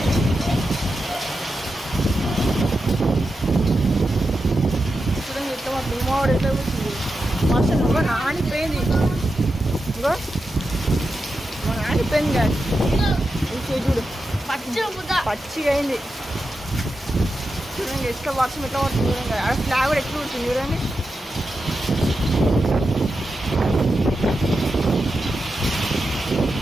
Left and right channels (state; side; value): normal; both; correlation 0.89